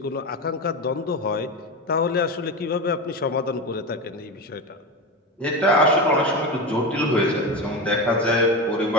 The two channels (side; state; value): both; normal; correlation 0.21